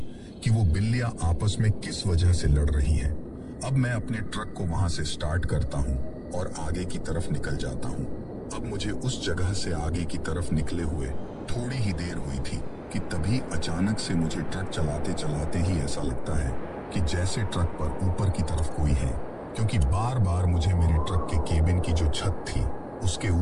कि वो बिल्लियां आपस में किस वजह से लड़ रही हैं। अब मैं अपने ट्रक को वहां से स्टार्ट करता हूं और आगे की तरफ निकल जाता हूं। अब मुझे उस जगह से आगे की तरफ निकले हुए थोड़ी ही देर हुई थी कि तभी अचानक से मुझे ट्रक चलाते चलाते ही ऐसा लगता है कि जैसे ट्रक पर ऊपर की तरफ कोई है, क्योंकि बार बार मुझे मेरे ट्रक के केबिन की जो छत थी उसके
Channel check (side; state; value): both; identical; correlation 1.00